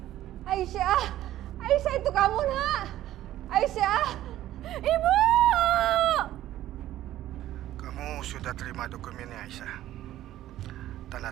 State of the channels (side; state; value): left; quieter; 13.6 dB